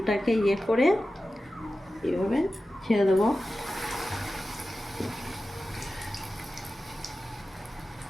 করে এইভাবে ছেড়ে দেবো।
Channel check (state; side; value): normal; both; correlation 0.94